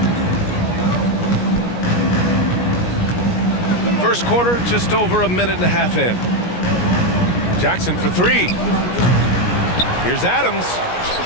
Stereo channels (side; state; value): right; late; 17 ms